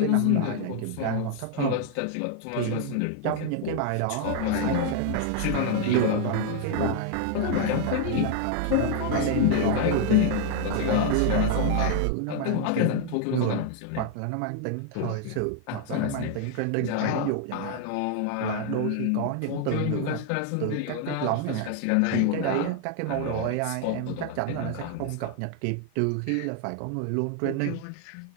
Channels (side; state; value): both; different; correlation 0.00